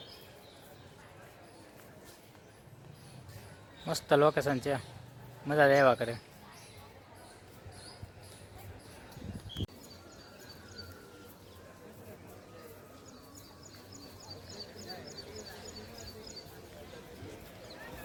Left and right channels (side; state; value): both; identical; correlation 1.00